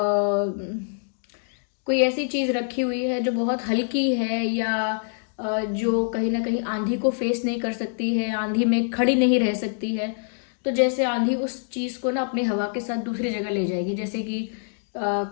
कोई ऐसी चीज रखी हुई है जो बहुत हल्की है या जो कहीं ना कहीं आंधी को फेस नहीं कर सकती है, आंधी में खड़ी नहीं रह सकती है, तो जैसे आंधी उस चीज को ना अपनी हवा के साथ दूसरी जगह ले जाएगी। जैसे कि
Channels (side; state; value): right; silent; digital silence